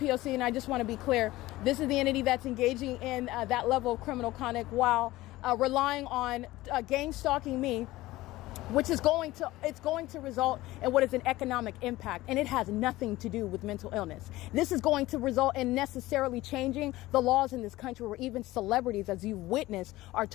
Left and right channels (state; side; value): quieter; right; 17.8 dB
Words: and I just want to be clear, this is the entity that's engaging in that level of criminal conduct while relying on gang stalking me, which is going to result in what is an economic impact, and it has nothing to do with mental illness. This is going to result in necessarily changing the laws in this country, where even celebrities, as you've witnessed, are